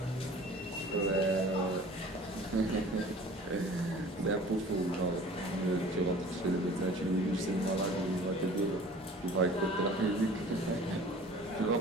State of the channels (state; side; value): normal; both; correlation 0.45